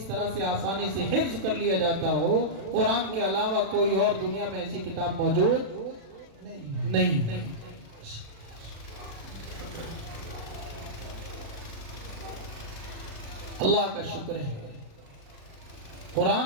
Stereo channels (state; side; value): late; left; 36 ms